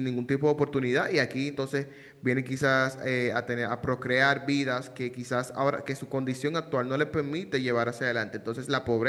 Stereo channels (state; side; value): identical; both; correlation 1.00